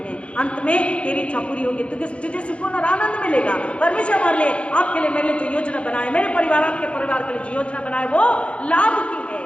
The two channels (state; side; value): late; right; 0.060 ms